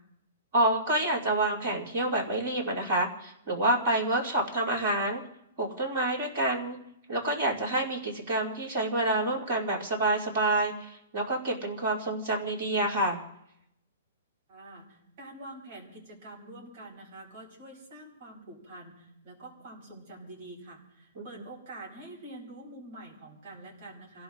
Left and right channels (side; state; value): both; inverted; correlation -0.34